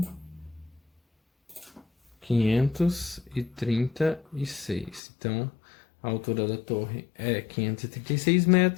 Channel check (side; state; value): right; drops out; at 5.0 s